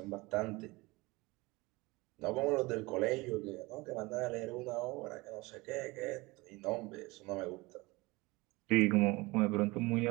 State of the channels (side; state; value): left; quieter; 23.0 dB